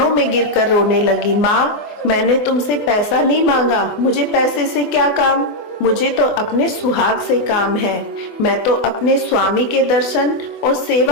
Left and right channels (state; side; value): late; right; 24 ms